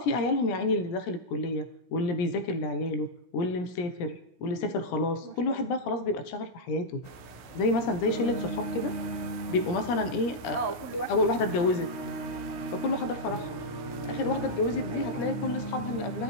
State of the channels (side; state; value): right; late; 16 ms